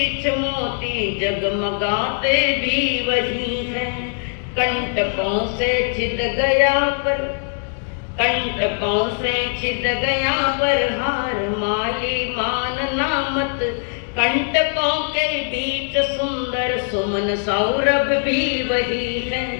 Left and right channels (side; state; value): right; silent; 57 dB below the other